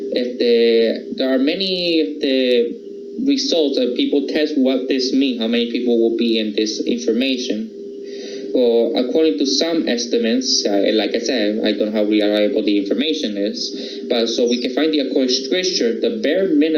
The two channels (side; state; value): both; identical; correlation 1.00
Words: There are many results that people test what this means, how many people will be in this information. Well, according to some estimates, like I said, I don't know how reliable the information is, but so we can find the according scripture, the bare